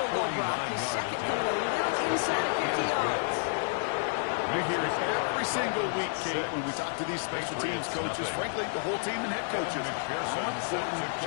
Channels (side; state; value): right; silent; digital silence